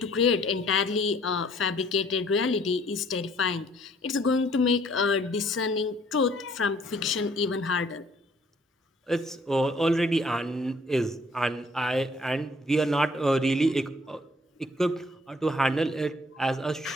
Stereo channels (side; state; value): both; normal; correlation 0.61